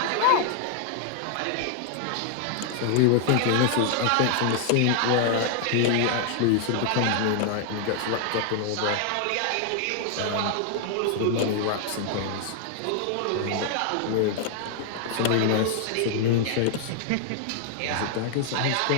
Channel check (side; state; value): both; different; correlation 0.00